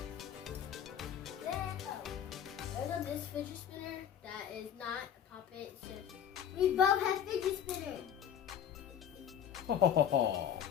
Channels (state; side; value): quieter; right; 9.0 dB